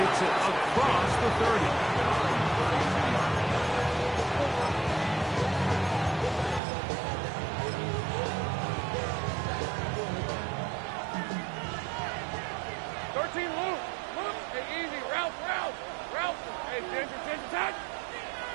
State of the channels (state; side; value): drops out; left; at 6.6 s